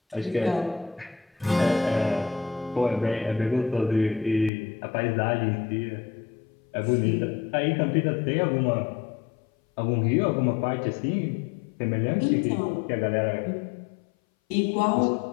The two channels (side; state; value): right; drops out; at 4.5 s